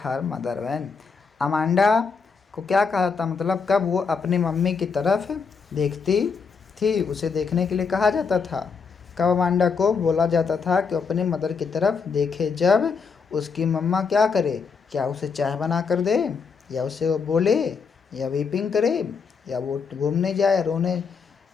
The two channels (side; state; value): right; quieter; 5.4 dB